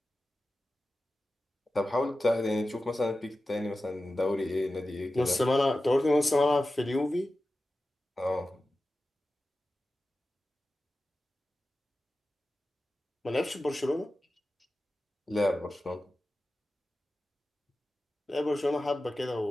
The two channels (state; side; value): normal; both; correlation 0.94